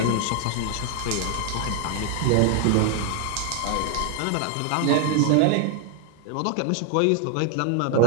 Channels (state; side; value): different; both; correlation 0.00